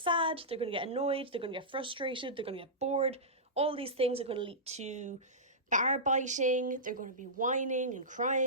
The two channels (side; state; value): both; normal; correlation -0.16